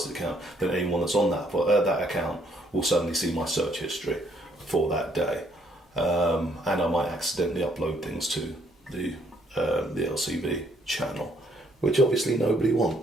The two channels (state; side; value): normal; both; correlation 0.68